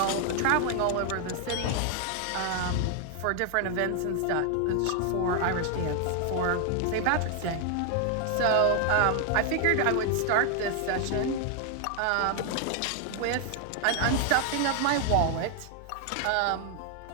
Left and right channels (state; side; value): different; both; correlation 0.00